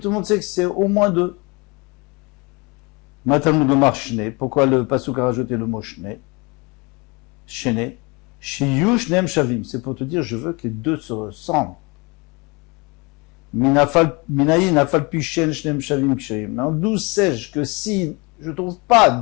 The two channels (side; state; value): right; quieter; 27.7 dB